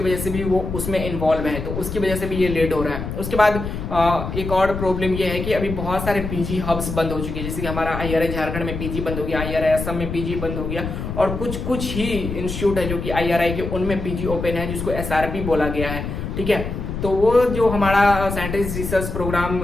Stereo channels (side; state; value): left; noise; rumble, 5 dB below the sound